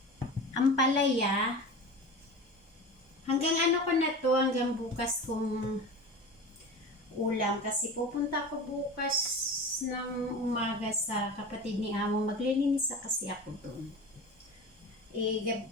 Ampalaya. Hanggang ko na to, hanggang bukas kong ulam. Kasi pupunta ako bukas ng umaga sa kapatid ni Amo. Maglilinis kasi ako doon.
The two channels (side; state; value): both; normal; correlation 0.32